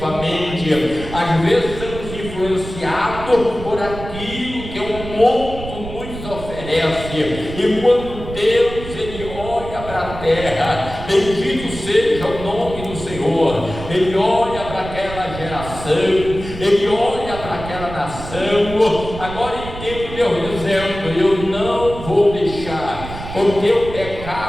Às vezes somos influenciados por aquilo que o mundo nos oferece, e quando Deus ele olha para a terra, bendito seja o nome do Senhor, ele olha para aquela geração, ele olha para aquela nação. Agora entendo Deus dizendo: eu não vou deixar, porque o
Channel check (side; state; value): right; noise; rumble, 11 dB below the sound